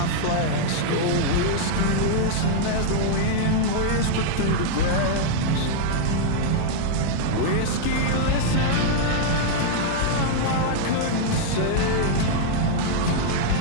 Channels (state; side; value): different; both; correlation -0.01